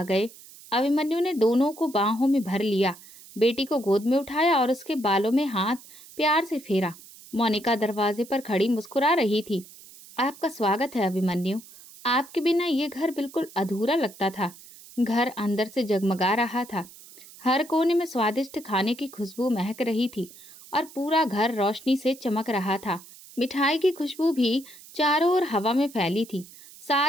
गए। अभिमन्यु ने दोनों को बाहों में भर लिया, बेटी को गोद में उठाया और उसके बालों में हाथ प्यार से फेरा। मोनिका दरवाजे पर खड़ी मुस्कुरा रही थी। आपका स्वागत है अभिमन्यु। आपके बिना ये घर बिल्कुल अधूरा लगता था। घर अंदर से जगमगा रहा था। हर कोने में स्वादिष्ट खाने की खुशबू महक रही थी और पूरा घर रोशनी से चमक रहा था। मिठाई की खुशबू भी चारों ओर हवा में फैली थी।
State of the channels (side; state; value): right; noise; hiss, 20 dB below the sound